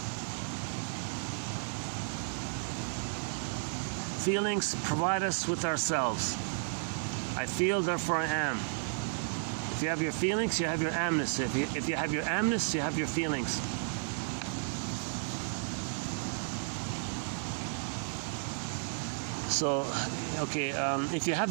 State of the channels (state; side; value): silent; left; 56 dB below the other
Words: Feelings provide us with ourselves. I feel, therefore I am. If you have your feelings, you have your amness. If you have your amness, you have your feelings. So, okay, if you have